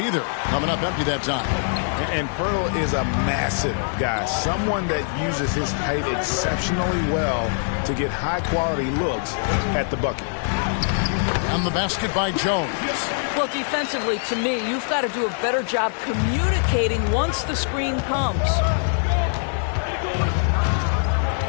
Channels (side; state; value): right; silent; digital silence